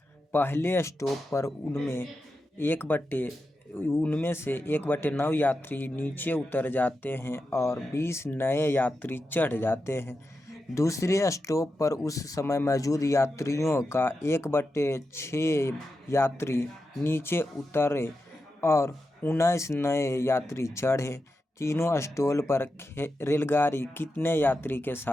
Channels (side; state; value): both; normal; correlation 0.89